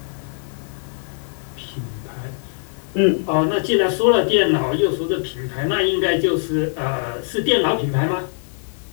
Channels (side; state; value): right; silent; digital silence